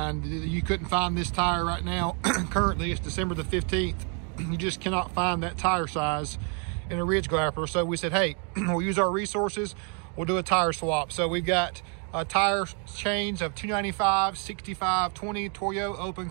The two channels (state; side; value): quieter; left; 38.3 dB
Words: You couldn't find this tire right now. Currently, it's December the 15th. You just cannot find that tire size in a Ridge Grappler. So we said, hey, we'll use our resources, we'll do a tire swap. So we've got a tire change of 295, 65, 20 Toyo Open